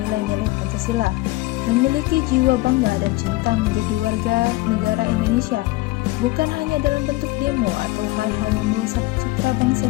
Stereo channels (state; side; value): quieter; right; 20.1 dB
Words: Pancasila, memiliki jiwa bangga dan cinta menjadi warga negara Indonesia, bukan hanya dalam bentuk demo atau hal-hal yang merusak citra